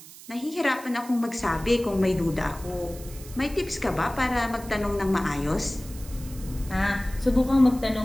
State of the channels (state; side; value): noise; right; hiss, 17 dB below the sound